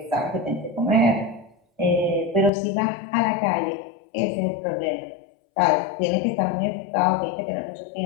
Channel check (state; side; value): drops out; right; at 2.5 s